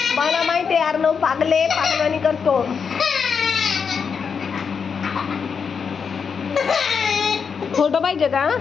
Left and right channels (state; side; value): quieter; right; 6.2 dB